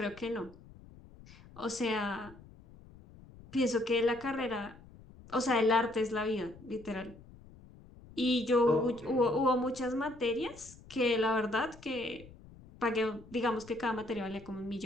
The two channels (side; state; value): left; noise; rumble, 21 dB below the sound